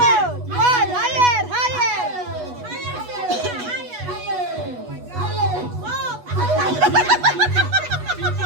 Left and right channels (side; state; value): left; late; 8.2 ms